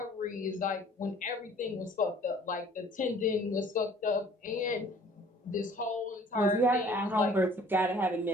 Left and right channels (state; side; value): normal; both; correlation 0.53